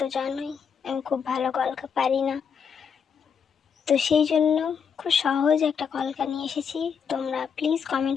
জানোই আমি খুব ভালো কলকা পারি না, তো সেই জন্য খুব সহজ একটা কলকা নিয়ে এসেছি। তোমরা প্লিজ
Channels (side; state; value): right; quieter; 6.8 dB